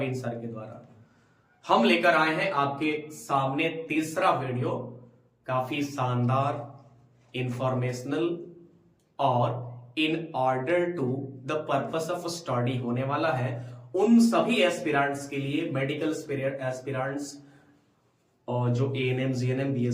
सर के द्वारा। हम लेकर आए हैं आपके सामने तीसरा वीडियो, काफी शानदार, इंफॉर्मेशनल और in order to the purpose of study होने वाला है उन सभी एस्पिरेंट्स के लिए, मेडिकल एस्पिरेंट्स और जो एएनएम, जीएनएम,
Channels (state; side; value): identical; both; correlation 1.00